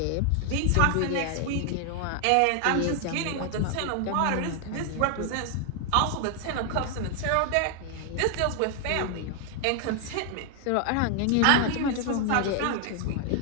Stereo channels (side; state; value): both; different; correlation 0.00